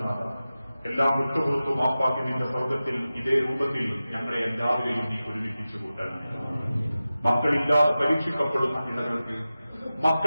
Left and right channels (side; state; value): both; inverted; correlation -0.95